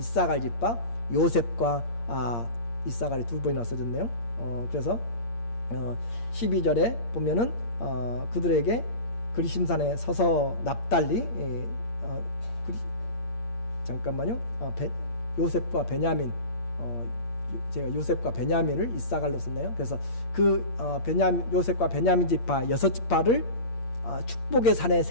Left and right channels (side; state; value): right; late; 8.6 ms